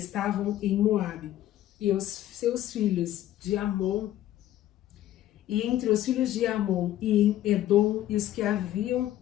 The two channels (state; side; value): quieter; right; 13.2 dB